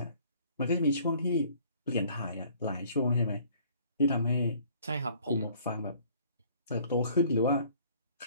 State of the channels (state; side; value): inverted; both; correlation -0.56